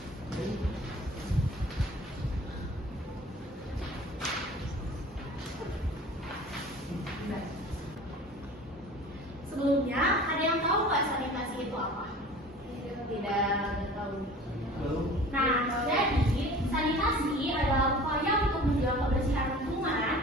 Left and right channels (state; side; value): normal; both; correlation 0.43